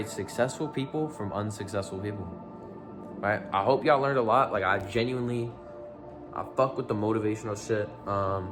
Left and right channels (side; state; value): both; identical; correlation 1.00